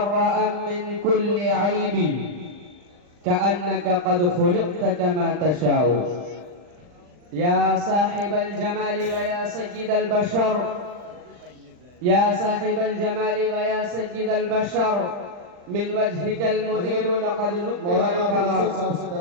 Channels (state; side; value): late; left; 40 ms